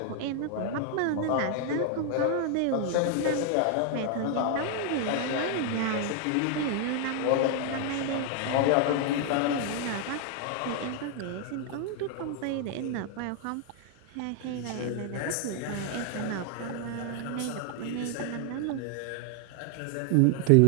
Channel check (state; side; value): different; both; correlation 0.00